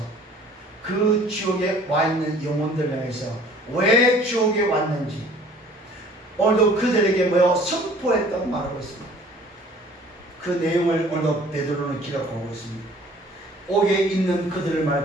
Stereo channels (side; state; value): both; normal; correlation 0.52